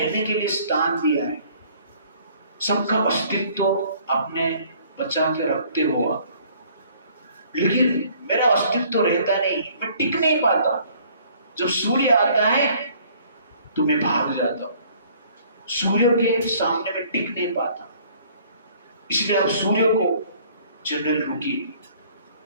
के लिए स्थान दिया है, सबका अस्तित्व आपने बचा के रखते हुआ, लेकिन मेरा अस्तित्व रहता नहीं, मैं टिक नहीं पाता। जब सूर्य आता है तो मैं भाग जाता हूं, सूर्य के सामने में टिक नहीं पाता। इसलिए आप सूर्य को जनरल रुकिए,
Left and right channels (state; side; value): inverted; both; correlation -0.57